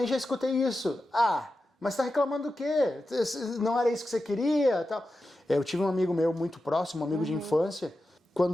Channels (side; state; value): both; normal; correlation 0.91